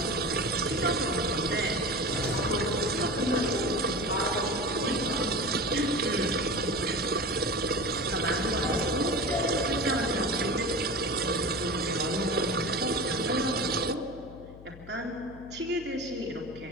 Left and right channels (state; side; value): noise; left; hum, 17 dB below the sound